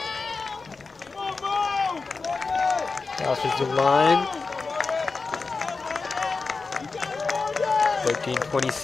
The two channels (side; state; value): right; quieter; 4.2 dB